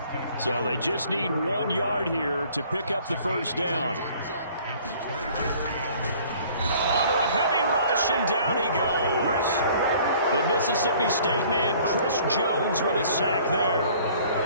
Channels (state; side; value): inverted; both; correlation -0.54